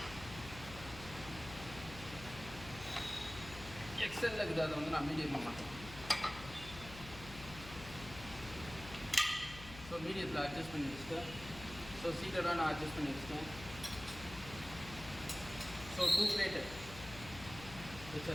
எக்ஸலில் இருக்குது, அதை வந்து நான் மீடியம் பண்ண மாட்டேன். ஸோ மீடியத்தில் அட்ஜஸ்ட் பண்ணி வச்சுட்டேன். ஸோ சீட்டடாக நான் அட்ஜஸ்ட் பண்ணி வச்சுட்டேன். ஸோ 2 பிளேட்டு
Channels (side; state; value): left; noise; hum, 13 dB below the sound